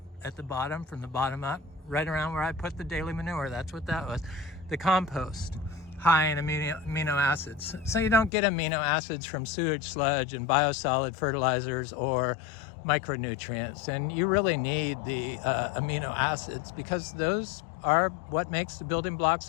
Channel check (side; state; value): right; drops out; at 8.3 s